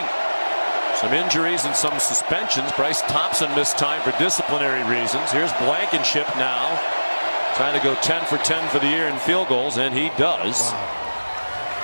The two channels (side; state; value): both; inverted; correlation -1.00